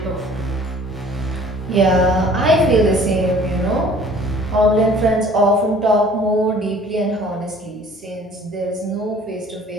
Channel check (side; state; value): both; normal; correlation 0.52